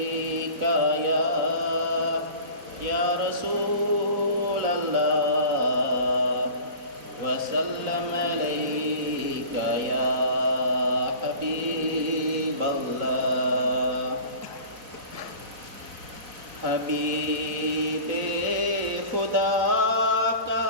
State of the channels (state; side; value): late; left; 4.0 ms